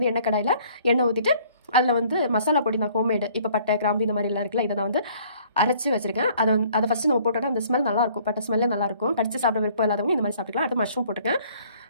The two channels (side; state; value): both; inverted; correlation -0.57